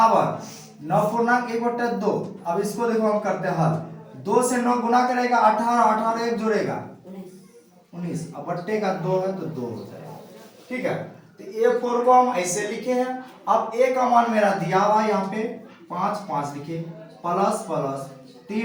9.1/2। अब इसको देखो हम करते हैं हल, 2 से 9 गुना करेगा 18, 18 एक जोड़ेगा 19, अब बट्टे का 2 है तो 2 हो जाएगा, ठीक है। तो a4 को हम ऐसे लिखे हैं। अब a का मान मेरा दिया हुआ है यहाँ पे 5 लिखे, प्लस प्लस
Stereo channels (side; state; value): both; identical; correlation 1.00